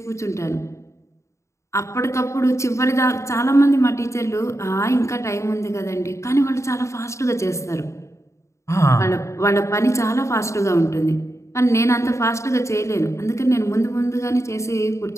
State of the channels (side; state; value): right; late; 0.14 ms